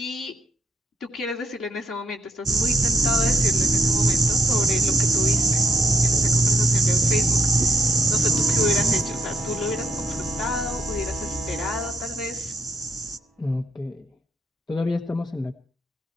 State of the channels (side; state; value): both; normal; correlation 0.76